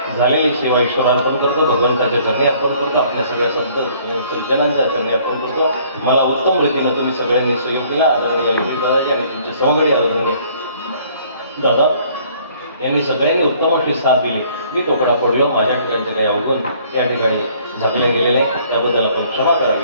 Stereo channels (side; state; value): both; inverted; correlation -0.59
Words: झालेली सेवा ईश्वराला अर्पण करतो, भगवंताच्या चरणी अर्पण करतो, आपल्या सगळ्या संत सज्जनांच्या चरणी अर्पण करतो. मला उत्तम रीतीनं तुम्ही सगळ्यांनी सहयोग दिला. आदरणीय दादाजी आणि तुमचे सहकारी आदरणीय दादा यांनी सगळ्यांनी उत्तम अशी साथ दिली. मी तोकडा पडलो, माझ्या ठिकाणचे काही अवगुण या ठिकाणी झाकले गेलेले, त्याबद्दल आपण क्षमा